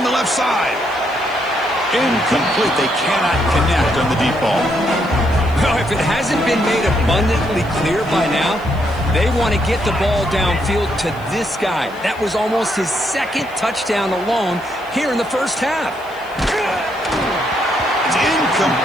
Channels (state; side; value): noise; left; hiss, 27 dB below the sound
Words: the left side. Incomplete. They cannot connect on the deep ball. Well, if it hasn't been made abundantly clear by now, they want to get the ball downfield to this guy. That was almost his 2nd touchdown alone here in the first half. It's